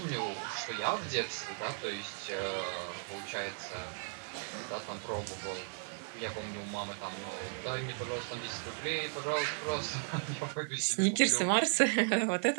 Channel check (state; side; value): silent; left; 54 dB below the other